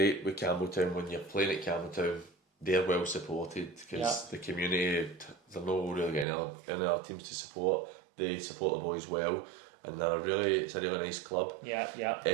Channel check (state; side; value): drops out; left; at 6.2 s